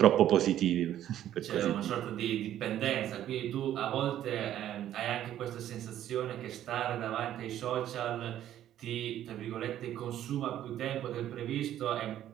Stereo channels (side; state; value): left; quieter; 11.8 dB